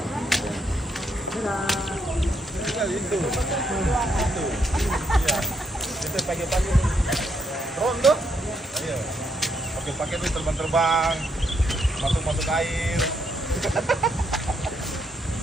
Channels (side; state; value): both; normal; correlation 0.76